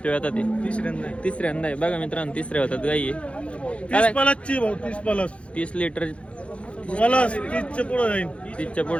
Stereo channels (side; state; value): right; late; 0.061 ms